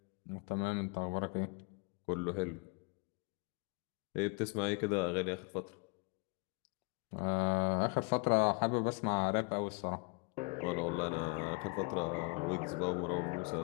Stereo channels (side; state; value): right; quieter; 32.9 dB